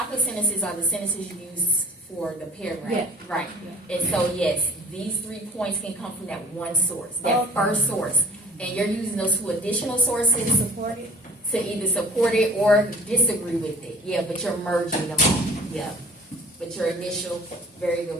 sentences are the sentences you use for the paragraph. Yeah. Right. Yeah. And so yes, these 3 points can come from that one source, that first source. And you're using those 2 additional sources Support it. to either support it or disagree with it. Yeah, but you're merging them all. Yeah. But your initial, very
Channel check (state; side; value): normal; both; correlation 0.47